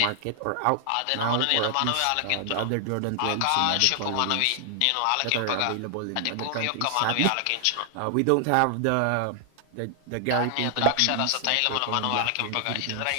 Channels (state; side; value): different; both; correlation 0.00